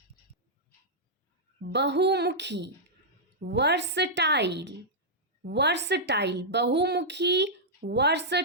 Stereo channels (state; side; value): normal; both; correlation -0.09